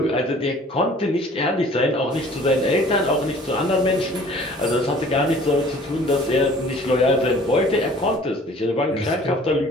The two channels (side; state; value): both; normal; correlation 0.51